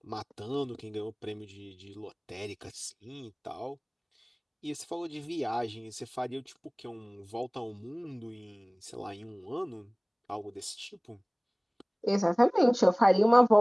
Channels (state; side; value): identical; both; correlation 1.00